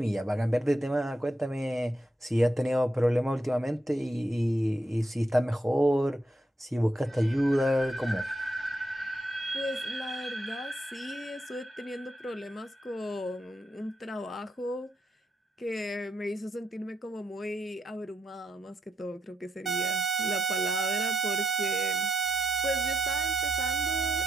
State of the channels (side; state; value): both; normal; correlation 0.82